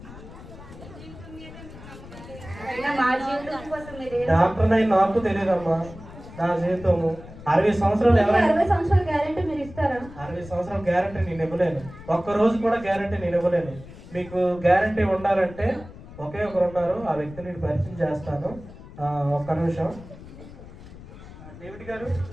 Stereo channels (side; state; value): left; noise; rumble, 16 dB below the sound